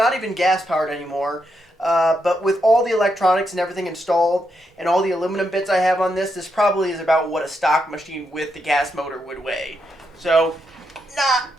even gas powered anymore. But with all the electronics and everything installed and all the aluminum bits I have on this, this probably is about what a stock machine with the gas motor would weigh. So, not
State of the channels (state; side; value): normal; both; correlation 0.82